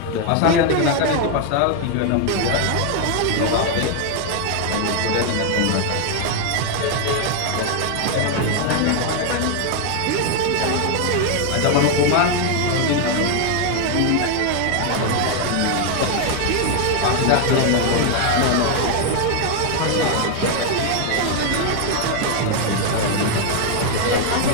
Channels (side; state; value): both; different; correlation 0.00